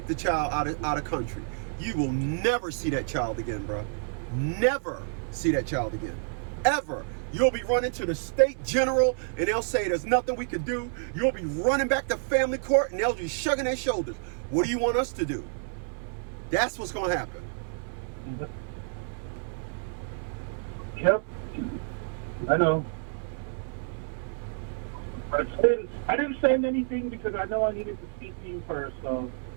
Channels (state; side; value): silent; left; 59 dB below the other